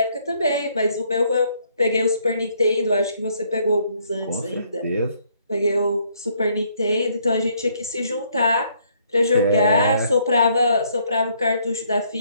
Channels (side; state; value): both; inverted; correlation -0.68